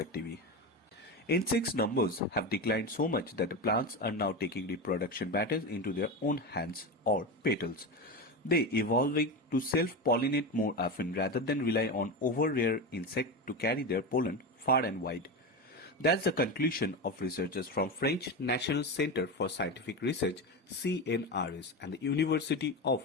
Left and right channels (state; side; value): normal; both; correlation 0.20